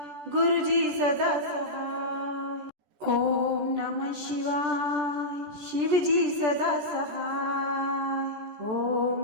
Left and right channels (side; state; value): left; late; 14 ms